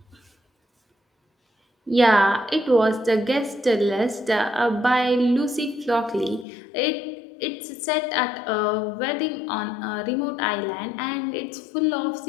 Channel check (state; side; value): drops out; right; at 6.5 s